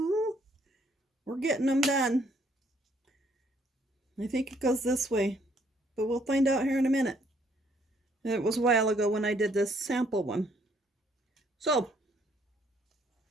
We're getting them done. I think it goes this way, but we'll find out here in a minute. It was a while ago when I did this sample one. So,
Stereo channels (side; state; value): both; normal; correlation 0.67